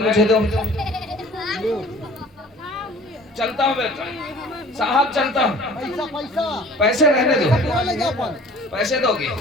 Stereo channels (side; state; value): both; normal; correlation 0.48